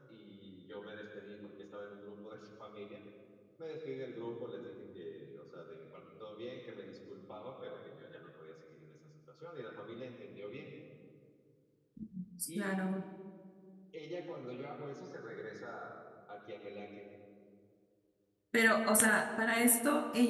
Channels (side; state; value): both; identical; correlation 1.00